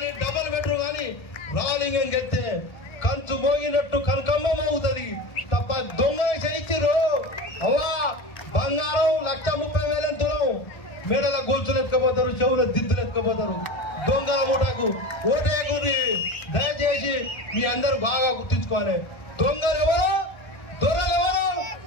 డబుల్ బెడ్రూమ్ కానీ రాలింగం గెలితే కంచు మోగినట్టు కనకమ్మ మోగుతుంది తప్ప దొంగలు చేయించారు. అవా బంగారం 1,30,000 తులం మేడల గొలుసులు ఎత్తుకపోతారు, చెవుల దిద్దులు ఎత్తుకపోతారు. దొంగల మూటకు ఓటేకుని దయచేసి మీ అందరూ బాగా గుర్తించుకోవాలి. దొంగలు ఎవరో దొరలు ఎవరో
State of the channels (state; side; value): late; right; 1.3 ms